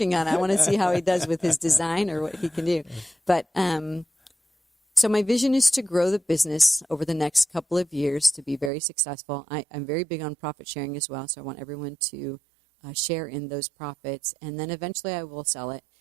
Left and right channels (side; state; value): left; drops out; at 8.7 s